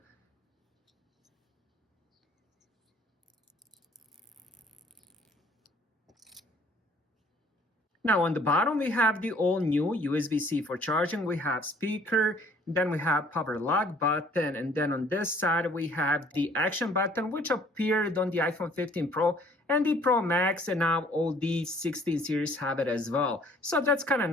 Now on the bottom, we have the all new USB-C for charging. We have speaker, then we have power lock button, and then on this side, we have the action button, which appeared on the iPhone 15 Pro and the Pro Max, and now all the 16 series have it as well. So that's kind of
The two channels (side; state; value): both; normal; correlation 0.57